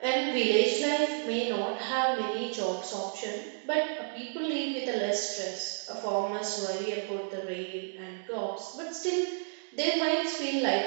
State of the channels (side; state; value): left; silent; digital silence